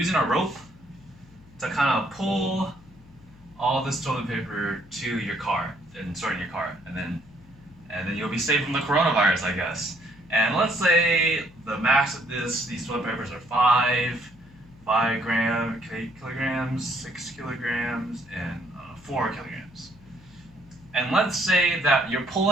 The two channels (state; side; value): noise; left; hum, 24 dB below the sound